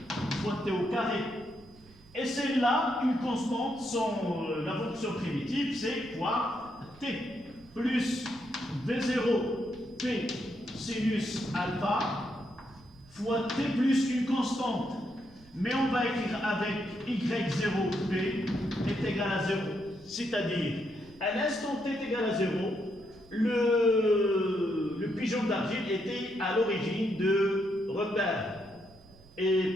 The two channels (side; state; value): right; noise; rumble, 24 dB below the sound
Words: fois t au carré. Et celle-là, une constante, la fonction primitive, c'est quoi? T plus V0 p sinus alpha fois t plus une constante. Mais on va écrire avec y0p est égal à 0. C'est-à-dire, à l'instant t est égal à 0, le pigeon d'argile était à l'origine de repères. Et